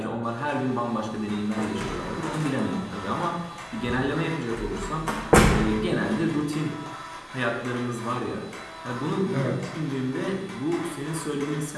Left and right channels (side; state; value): both; identical; correlation 1.00